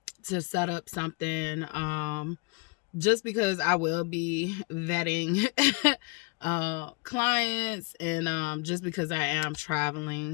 set up something. Just because I will be vetting clients, and just because I am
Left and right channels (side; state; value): right; quieter; 28.8 dB